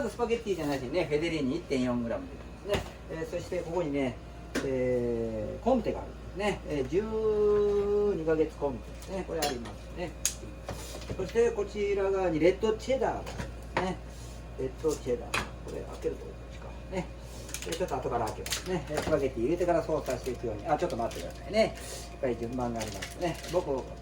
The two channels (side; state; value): both; identical; correlation 1.00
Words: ずスパゲッティじゃないしね、フェデリーニ 1.4g でですね。そしてここにね、コンテがあるんですね。12ヶ月コンテですね。これありますね。そしてこちら側にレッドチェダーがあるんですね。レッドチェダー。これ開けるとこっちかね。ちょっと後から開けますね。スパゲッティ入れてから操作していくように。ちょっと待ってくださいね。しっかり順番がありますね。僕、こ